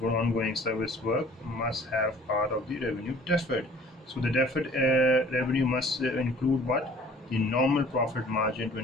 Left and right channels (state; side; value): normal; both; correlation 0.51